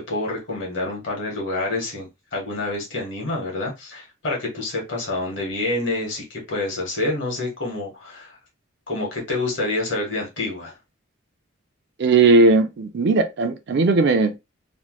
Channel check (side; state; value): both; normal; correlation 0.02